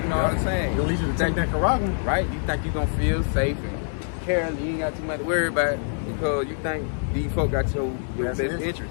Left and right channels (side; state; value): right; silent; digital silence